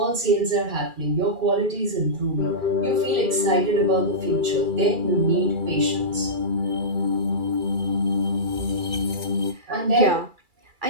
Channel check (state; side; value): late; left; 2.3 ms